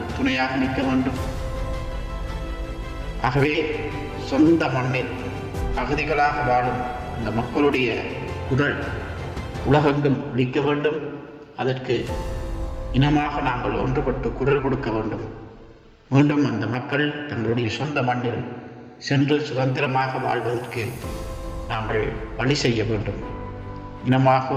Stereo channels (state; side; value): identical; both; correlation 1.00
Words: துணையாக நிற்க வேண்டும். ஆகவே சொந்த மண்ணில் அகதிகளாக வாழும் அந்த மக்களுடைய குரல் உலகெங்கும் ஒலிக்க வேண்டும். அதற்கு இனமாக நாங்கள் ஒன்றுபட்டு குரல் கொடுக்க வேண்டும். மீண்டும் அந்த மக்கள் தங்களுடைய சொந்த மண்ணில் சென்று சுதந்திரமாக வாழ்வதற்கு நாங்கள் வழி செய்ய வேண்டும். இனமாக